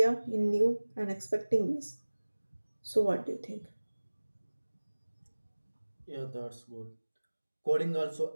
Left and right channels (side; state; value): both; inverted; correlation -1.00